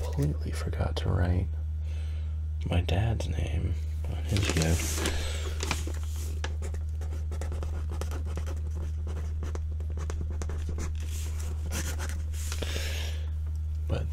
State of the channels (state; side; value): identical; both; correlation 1.00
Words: forgot to write my dad's name on his gift. But